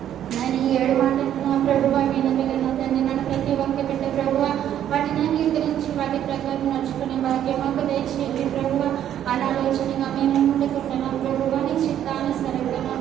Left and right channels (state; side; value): quieter; left; 10.7 dB